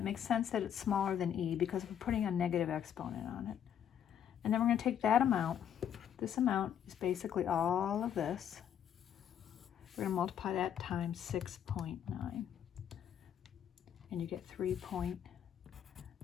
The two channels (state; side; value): quieter; right; 9.3 dB